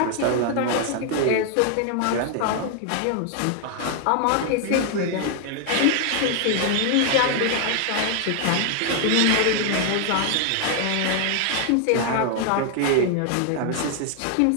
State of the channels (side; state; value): both; different; correlation 0.00